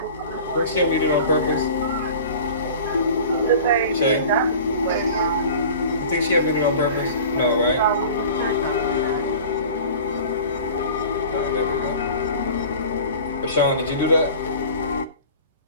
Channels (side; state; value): both; inverted; correlation -0.41